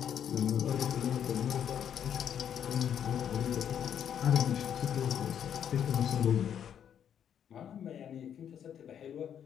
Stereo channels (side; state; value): right; quieter; 9.0 dB